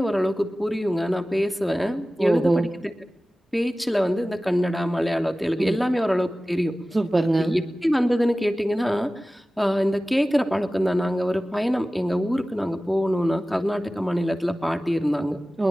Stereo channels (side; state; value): both; normal; correlation 0.96